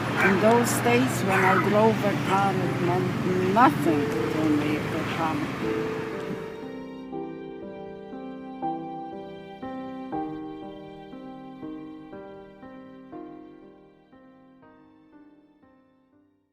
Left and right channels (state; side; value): identical; both; correlation 1.00